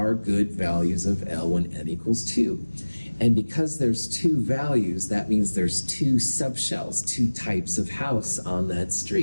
good values of L when n equals 2. And because there's 2 values, that means there's 2 subshells, 2 types of house on that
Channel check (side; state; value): both; inverted; correlation -1.00